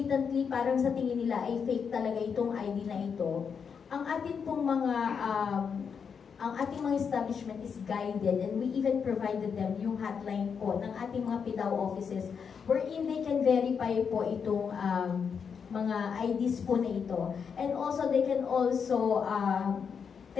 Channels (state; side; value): quieter; right; 6.5 dB